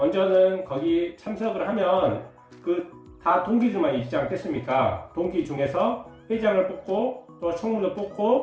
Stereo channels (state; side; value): identical; both; correlation 1.00